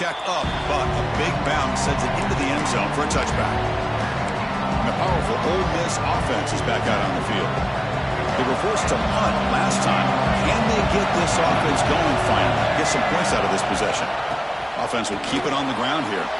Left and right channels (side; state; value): both; identical; correlation 1.00